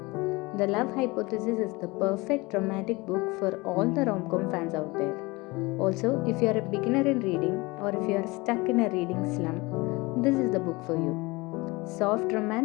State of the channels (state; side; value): quieter; right; 23.8 dB